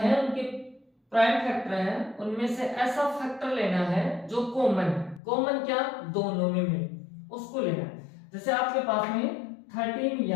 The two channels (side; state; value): right; drops out; at 5.2 s